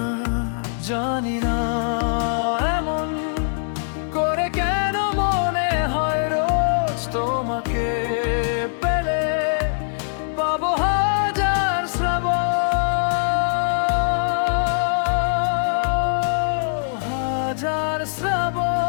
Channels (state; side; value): silent; right; digital silence